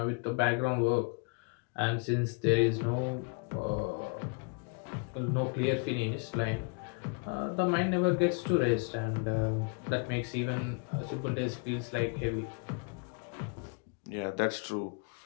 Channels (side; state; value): right; quieter; 35.4 dB